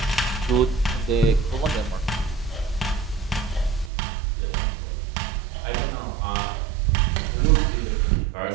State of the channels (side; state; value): left; drops out; at 3.9 s